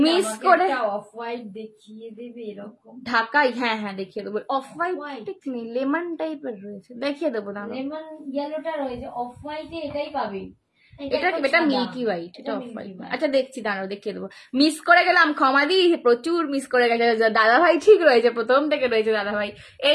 মিস করে অফ হোয়াইট দেখিয়ে দেবে এরকম ঢাকাই। হ্যাঁ দেখিয়ে দেবো। অফ হোয়াইট ঠিক নেই, লেমন টাইপের রয়েছে, দেখিয়ে দেবো না। লেমন ইয়েলোটা রয়েছে, অফ হোয়াইটে এটাই পাবে। এটা মিল্কি হোয়াইট, এটা অফ হোয়াইট। আচ্ছা দেখছি, দাঁড়াও দেখিয়ে দেবো। মিস করে গেলাম, ক্ষমা দি, প্রচুর মিস করে গেছে। দাদা ভাই ঠিক রয়েছে, প্রথম থেকে রয়েছে দাদা ভাই।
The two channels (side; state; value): both; identical; correlation 1.00